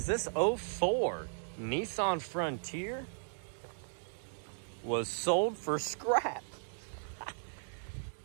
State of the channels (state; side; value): silent; left; digital silence